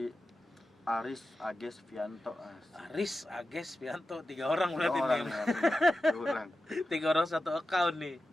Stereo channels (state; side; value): normal; both; correlation 0.92